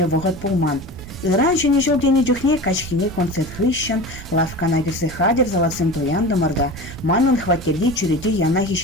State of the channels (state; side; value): noise; right; rumble, 15 dB below the sound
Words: вғыт пулман. Иран шенежул дені жүхне качхине концерт хыщан, лавкана кірсі хадер залацым тояндымырда, манын хваттерде чүреде янахи